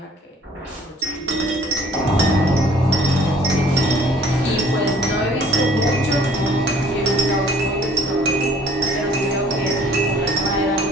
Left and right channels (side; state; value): both; normal; correlation 0.54